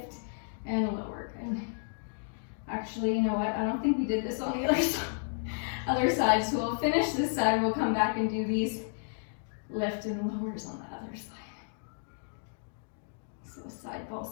and lower. And actually, you know what? I don't think we did this on the other side. So we'll finish this side. We'll come back and do these lift and lowers on the other side. So side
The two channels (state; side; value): silent; right; digital silence